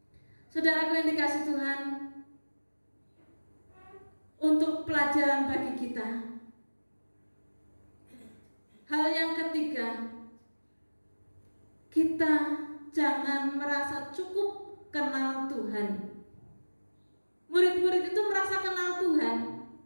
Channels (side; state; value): both; inverted; correlation -1.00